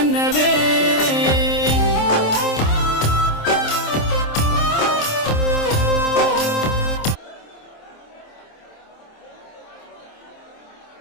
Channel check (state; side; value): late; right; 27 ms